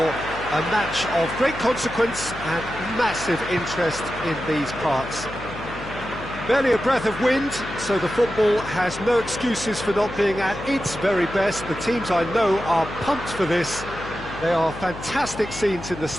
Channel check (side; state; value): left; noise; hum, 13 dB below the sound